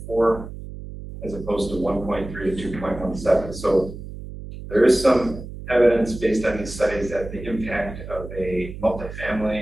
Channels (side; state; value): right; noise; hum, 11 dB below the sound